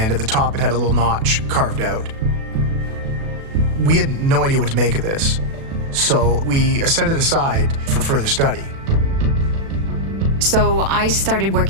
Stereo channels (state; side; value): late; left; 36 ms